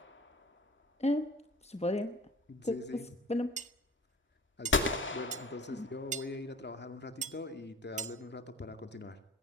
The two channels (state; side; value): normal; both; correlation 0.44